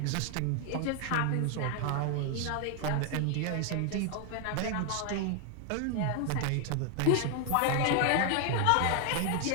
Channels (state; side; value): different; both; correlation 0.00